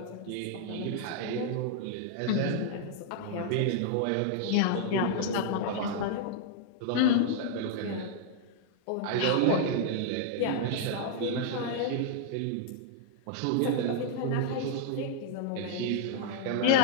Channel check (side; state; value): both; different; correlation -0.01